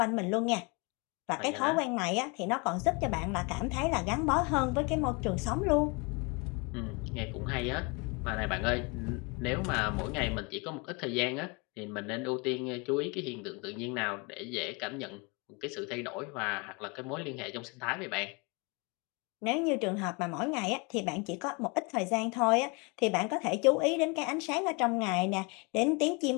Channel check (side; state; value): right; quieter; 30.1 dB